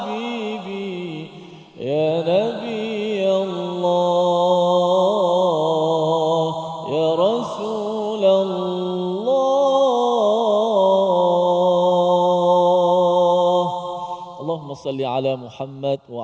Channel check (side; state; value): both; identical; correlation 1.00